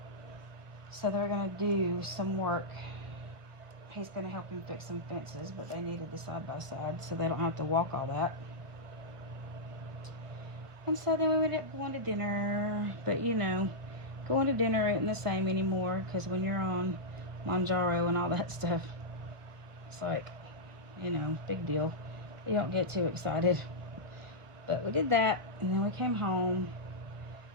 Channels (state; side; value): late; left; 1.6 ms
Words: So they're gonna do some work. He's gonna help him fix some fences, but they needed the side-by-side so they don't have to walk all that. And so then we ended up going to dinner. But you know, going to dinner isn't the same anymore, because when you're on Manjaro and all that stuff, it's like, you know, big deal. You don't get too excited. But we did that, and then we came home,